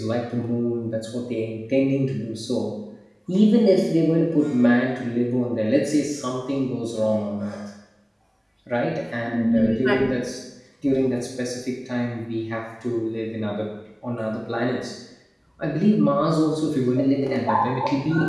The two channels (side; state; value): both; identical; correlation 1.00